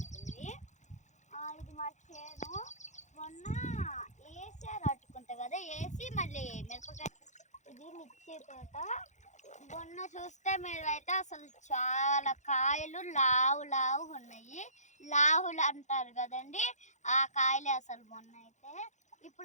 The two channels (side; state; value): right; late; 0.34 ms